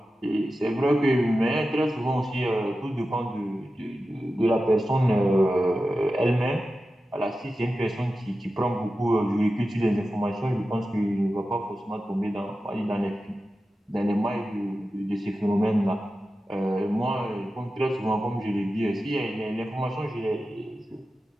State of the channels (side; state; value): both; normal; correlation 0.93